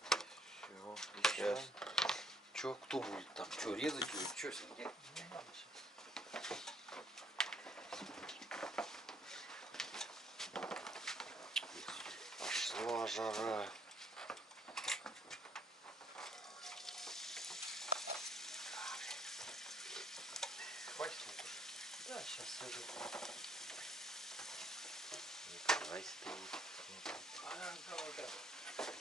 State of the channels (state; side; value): normal; both; correlation 0.66